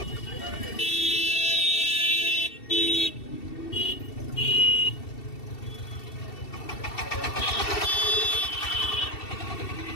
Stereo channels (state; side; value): late; right; 2.7 ms